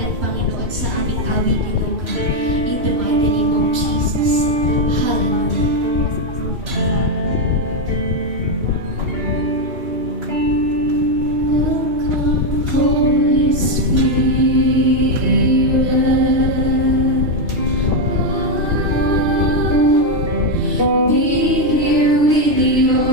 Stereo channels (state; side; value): late; left; 3.2 ms